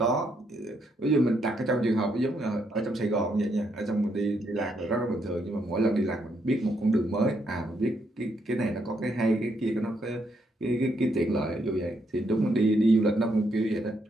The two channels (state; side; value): normal; both; correlation 0.76